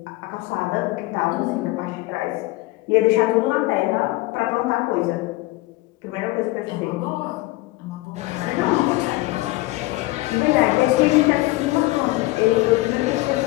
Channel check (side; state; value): right; quieter; 20.1 dB